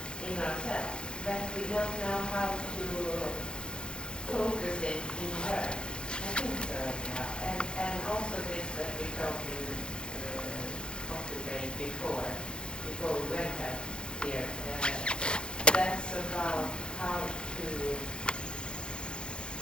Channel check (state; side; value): late; right; 0.050 ms